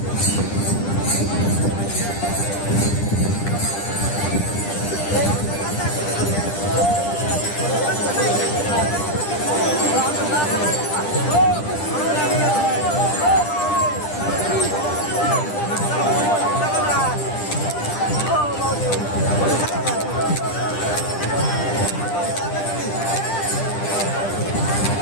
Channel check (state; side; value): late; right; 10 ms